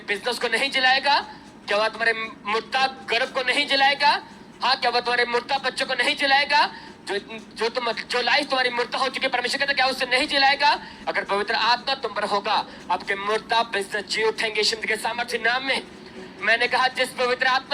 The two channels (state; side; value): identical; both; correlation 1.00